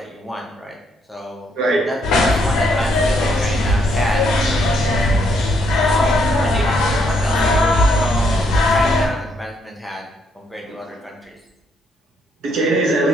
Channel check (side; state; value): both; normal; correlation 0.73